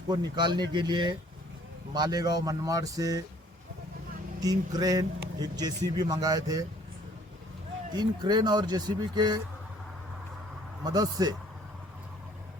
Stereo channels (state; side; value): normal; both; correlation 0.58